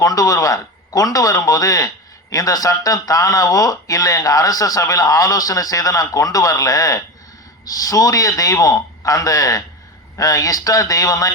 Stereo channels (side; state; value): both; normal; correlation 0.24